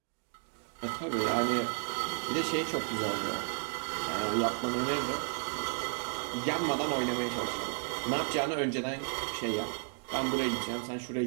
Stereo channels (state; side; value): silent; left; digital silence